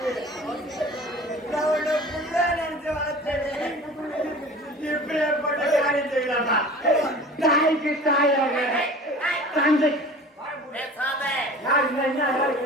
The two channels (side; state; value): both; normal; correlation 0.42